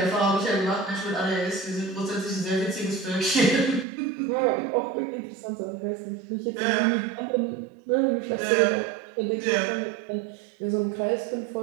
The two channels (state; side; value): drops out; left; at 3.9 s